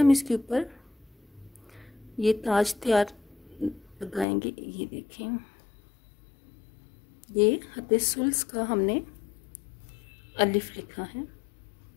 इसके ऊपर ये ताज तैयार लगाएंगे। ये देखें, ये हद सुल्स का हमने अलिफ लिखा है।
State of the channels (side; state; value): right; drops out; at 4.2 s